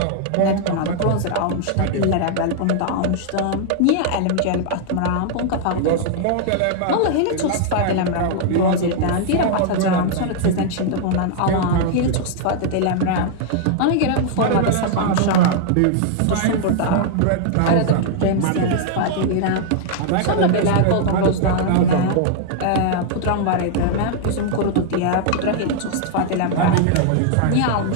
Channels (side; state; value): both; different; correlation -0.01